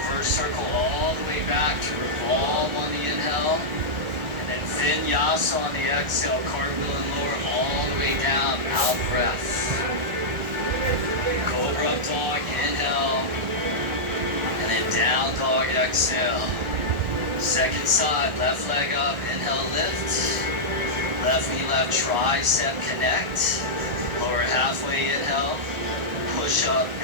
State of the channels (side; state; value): left; late; 1.4 ms